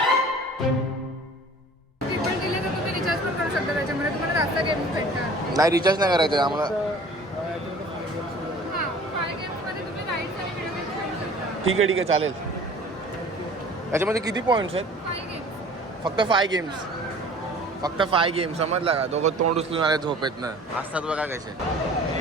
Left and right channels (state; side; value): normal; both; correlation 0.47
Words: ट्रिपल दिले तर तुम्ही रिचार्ज पण करू शकता त्याच्यामध्ये तुम्हाला जास्त गेम भेटतात. नाही रिचार्ज नाही करायचं आम्हाला. हां 5 गेम्समध्ये तुम्ही राईड्स आणि व्हिडिओ गेम्स खेळू शकता. ठीक आहे चालेल. त्याच्यामध्ये किती पॉइंट्स आहेत? 5 गेम्स. फक्त 5 गेम्स. फक्त 5 गेम्स समजला का? दोघं तोंड उचलून आले झोपेत ना. असतात बघा कसे.